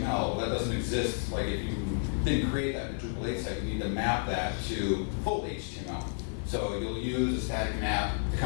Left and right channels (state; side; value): silent; right; digital silence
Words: Well, that doesn't exist. Like if you didn't create that in the Drupal 8 site, you need to map that to full HTML. So you'll use a static map to